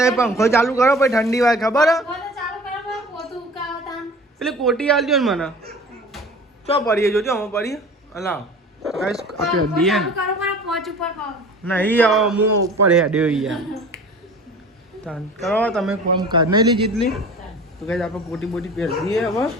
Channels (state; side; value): normal; both; correlation 0.42